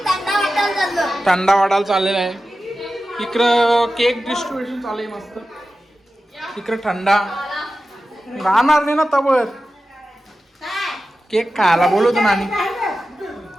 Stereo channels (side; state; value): both; normal; correlation 0.93